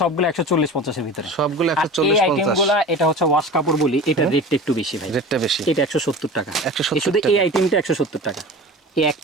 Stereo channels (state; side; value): normal; both; correlation 0.35